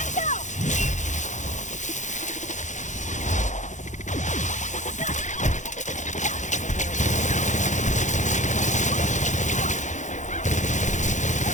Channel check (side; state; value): right; late; 0.35 ms